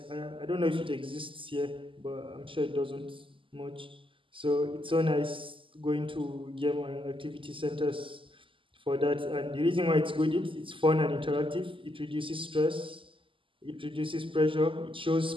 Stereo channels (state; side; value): late; left; 0.25 ms